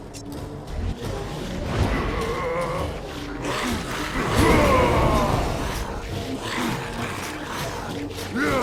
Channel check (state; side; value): identical; both; correlation 1.00